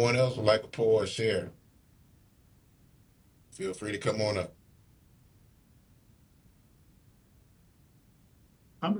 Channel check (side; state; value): both; identical; correlation 1.00